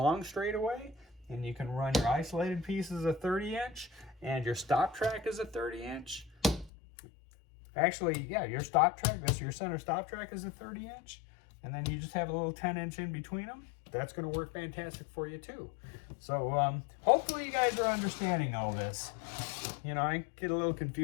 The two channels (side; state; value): right; drops out; at 6.7 s